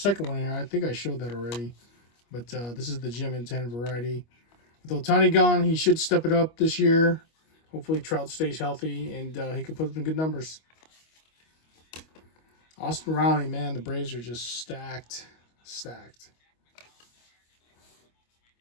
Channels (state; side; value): late; right; 25 ms